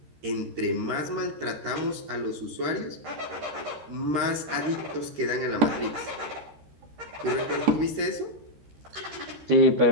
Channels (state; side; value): late; left; 13 ms